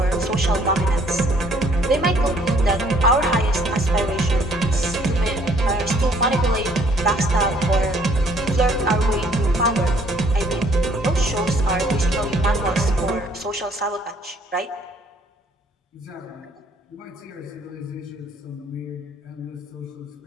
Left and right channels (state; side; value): normal; both; correlation 0.62